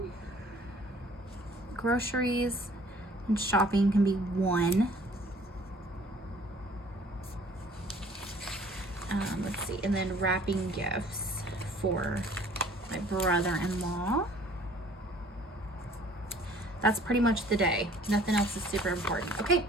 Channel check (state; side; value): normal; both; correlation 0.55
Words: groceries and shopping can be one. Let's see, and then wrapping gifts for my brother-in-law. That's pretty much the day. Nothing else is super important. Okay,